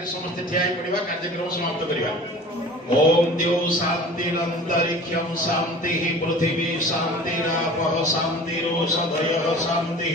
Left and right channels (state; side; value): normal; both; correlation 0.42